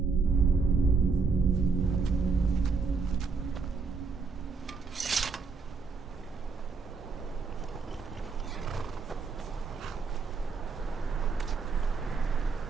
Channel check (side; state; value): left; quieter; 4.7 dB